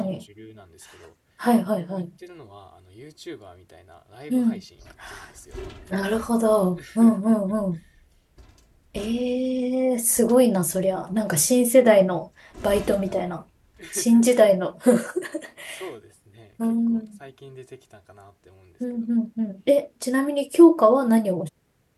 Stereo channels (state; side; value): identical; both; correlation 1.00